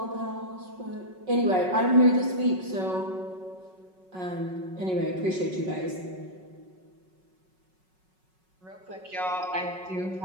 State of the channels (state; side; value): late; left; 5.4 ms